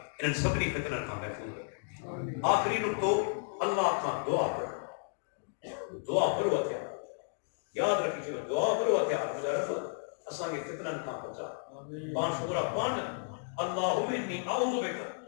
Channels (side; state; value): right; silent; digital silence